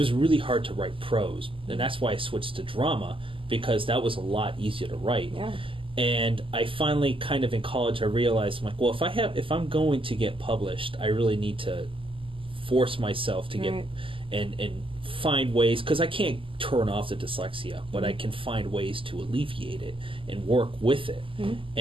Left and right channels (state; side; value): late; left; 0.25 ms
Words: really hard to write prose, and that's why I switched to drama, because that was a lot easier to write. Yeah. And I finally, kind of in college, I realized, I'm like, well, if I'm going to get published, I really need to force myself to get and find ways, because I can't turn off the dyslexia, but I can find ways to alleviate it and work with it.